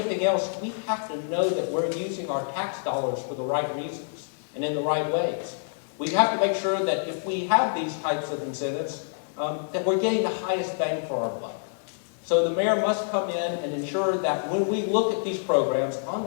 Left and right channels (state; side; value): silent; right; digital silence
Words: else, we have to know that we're using our tax dollars for the right reasons and in the right ways. We have to make sure that if we have these types of incentives, that we're getting the highest bang for our buck. So the mayor must come in and ensure that when we look at these programs on